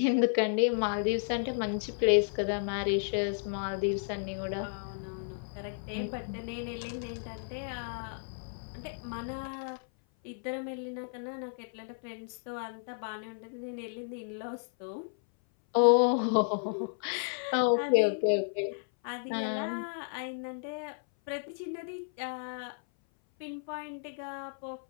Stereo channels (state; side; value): silent; right; 56 dB below the other